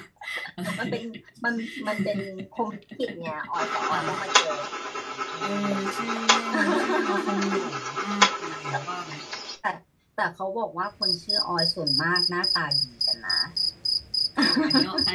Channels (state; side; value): identical; both; correlation 1.00